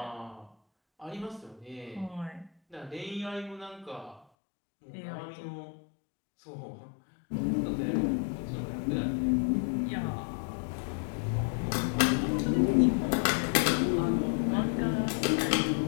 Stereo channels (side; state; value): right; drops out; at 4.2 s